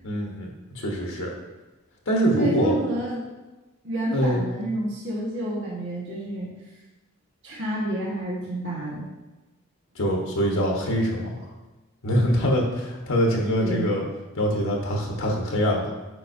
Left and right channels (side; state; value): both; normal; correlation 0.44